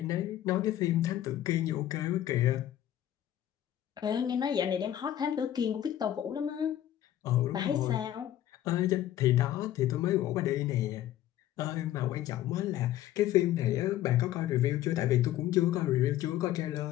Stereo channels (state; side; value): quieter; right; 12.5 dB